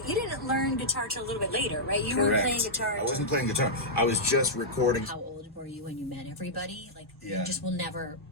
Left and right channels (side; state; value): both; normal; correlation -0.10